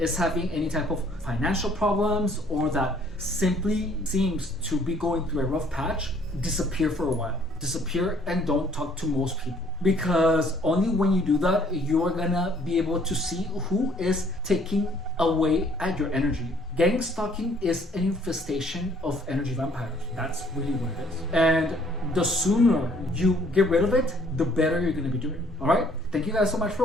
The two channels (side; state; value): both; normal; correlation 0.61